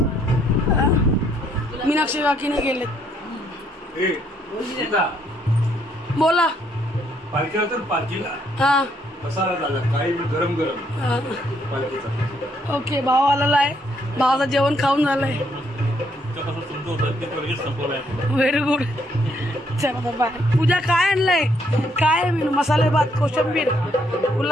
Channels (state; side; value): normal; both; correlation 0.71